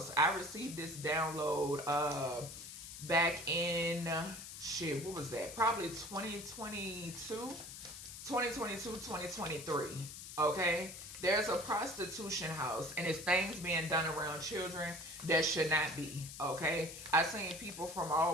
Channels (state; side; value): noise; left; hiss, 11 dB below the sound